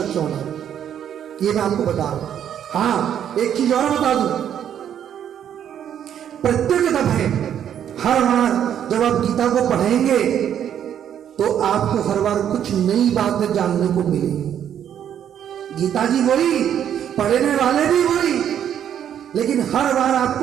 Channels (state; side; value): quieter; left; 9.6 dB